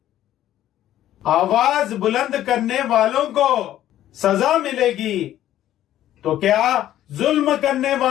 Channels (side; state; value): right; quieter; 12.6 dB